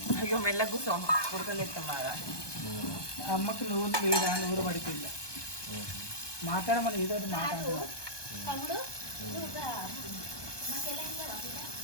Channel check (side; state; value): right; late; 1.2 ms